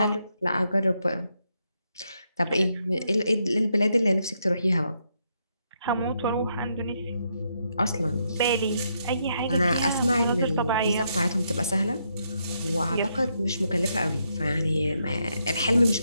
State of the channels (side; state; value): both; inverted; correlation -0.78